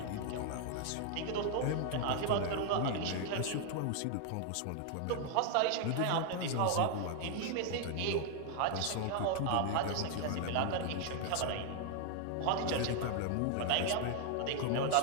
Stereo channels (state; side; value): different; both; correlation 0.00